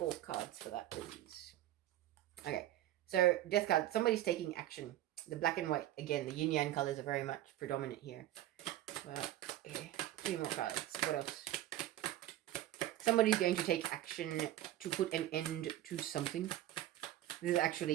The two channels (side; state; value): left; quieter; 13.9 dB